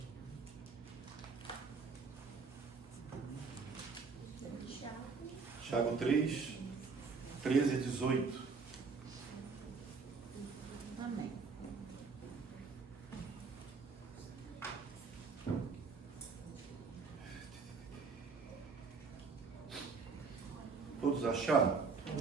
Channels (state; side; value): quieter; left; 4.8 dB